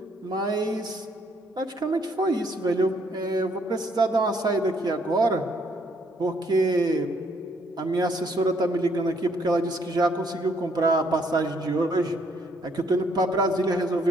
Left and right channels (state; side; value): normal; both; correlation 0.68